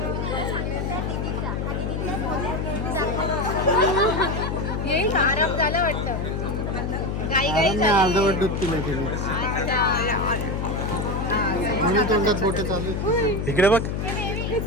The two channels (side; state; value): left; noise; hum, 2 dB below the sound